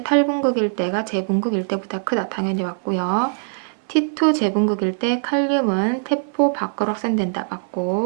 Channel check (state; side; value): silent; left; 65 dB below the other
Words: 탈분국일 때가 재분국일 때보다 크다. 당연히 맞고요. T2 재분국일 때 칼륨은 세포 밖으로 확산된다.